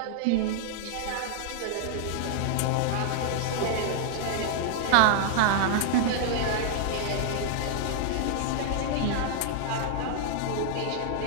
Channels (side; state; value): both; different; correlation -0.01